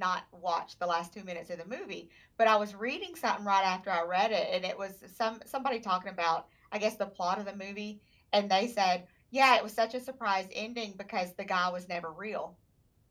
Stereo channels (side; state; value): both; identical; correlation 1.00